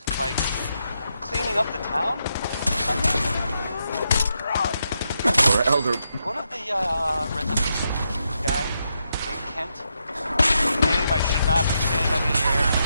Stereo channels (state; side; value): inverted; both; correlation -0.82